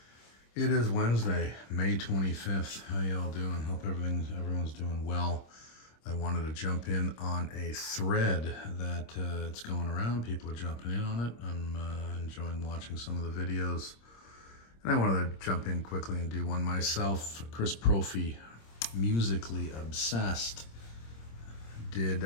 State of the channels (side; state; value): right; late; 26 ms